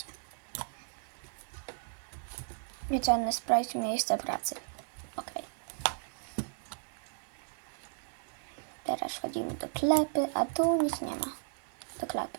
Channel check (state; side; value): silent; left; 54 dB below the other